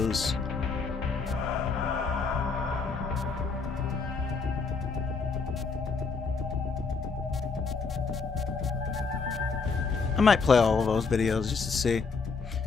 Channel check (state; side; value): quieter; right; 4.8 dB